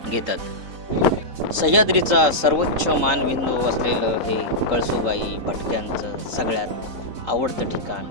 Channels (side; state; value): left; late; 3.8 ms